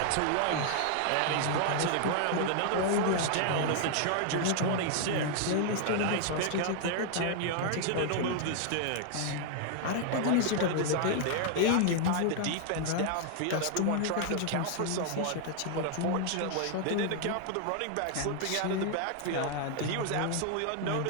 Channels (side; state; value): both; different; correlation 0.00